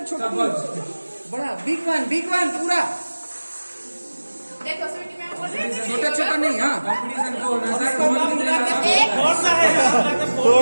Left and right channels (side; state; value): both; inverted; correlation -1.00